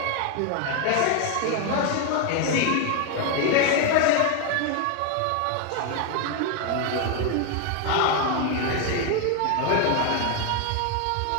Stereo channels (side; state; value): both; different; correlation 0.01